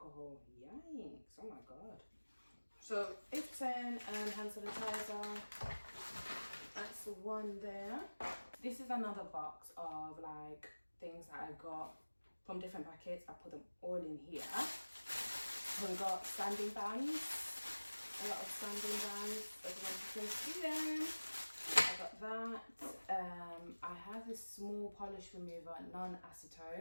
Yikes, oh my god. So 80% hand sanitizer. That's the one there. This is another box of like things that I got from different packets. I put them all in here. We got sanding bands, a lot of sanding bands, as you can see them. I got that. I have this small polish remover,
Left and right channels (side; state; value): both; inverted; correlation -1.00